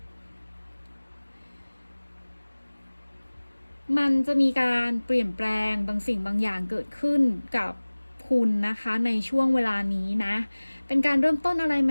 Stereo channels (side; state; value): both; inverted; correlation -1.00